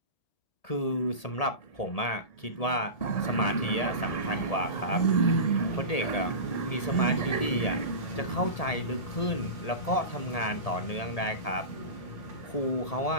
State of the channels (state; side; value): late; right; 1.8 ms